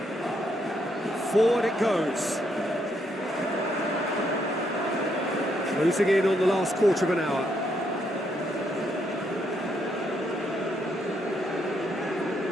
Forward it goes. Closing in on the last quarter of an hour.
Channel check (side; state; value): both; normal; correlation 0.75